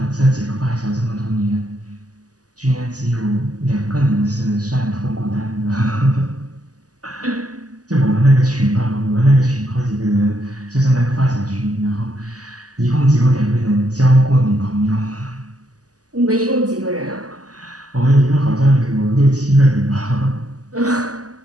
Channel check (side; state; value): left; late; 0.67 ms